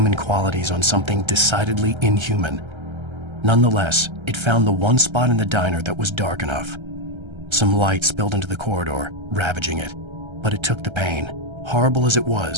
qualities on something decidedly inhuman. Nonetheless, it found the one spot in the diner that was dark enough. Some light spilled into the corridor, ravaging it. But it took the pain. Horrible as it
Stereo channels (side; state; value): left; late; 1.3 ms